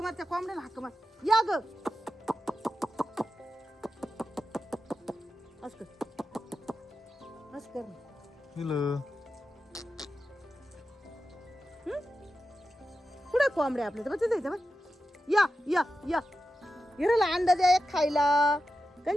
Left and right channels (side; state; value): both; normal; correlation 0.91